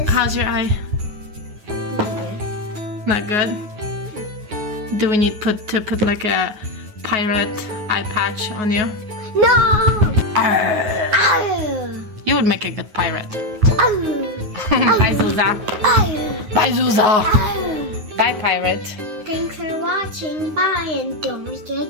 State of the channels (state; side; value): late; left; 9.4 ms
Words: How's your eye? Not good? Do we need to put like a pirate eye patch on you? No! Arr. Oh. You would make a good pirate. Oh. Bye, Zuza. Oh. Bye, Zuza. Oh. Bye, pirate. Thanks for watching. Bye, and don't